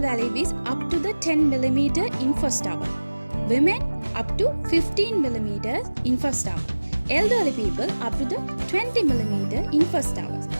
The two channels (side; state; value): both; inverted; correlation -1.00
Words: is up to the 10 mm in first hour. Women up to 15 mm in first hour. Elderly people up to the 20 mm in first hours.